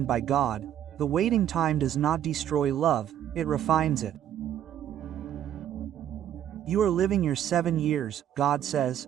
by God, the waiting time does not destroy love, it refines it. You are living your 7 years, God says,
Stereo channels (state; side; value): quieter; left; 10.6 dB